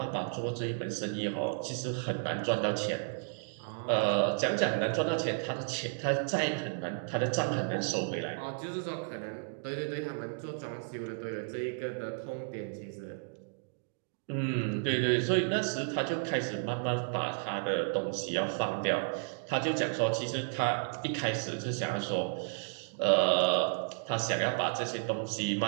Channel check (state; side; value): silent; left; digital silence